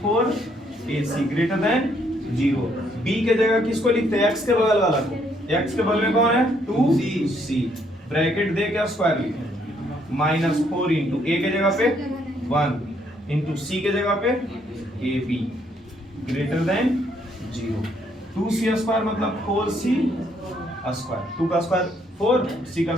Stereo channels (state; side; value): normal; both; correlation 0.70